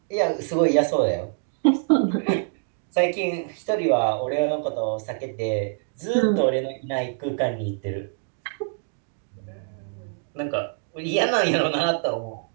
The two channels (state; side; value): silent; left; 62 dB below the other